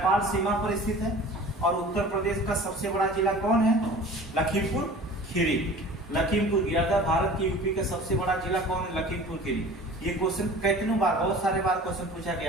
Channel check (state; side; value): normal; both; correlation 0.42